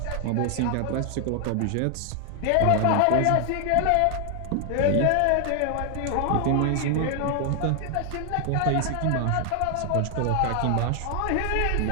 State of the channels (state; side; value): different; both; correlation 0.00